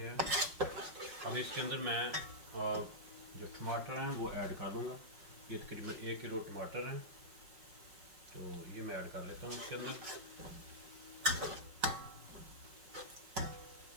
अब इसके अंदर मैं जो टमाटर हैं वो ऐड कर दूँगा। ये तकरीबन 1 किलो टमाटर हैं, तो ये मैं ऐड कर लेता हूँ इसके अंदर।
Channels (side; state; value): left; late; 5.4 ms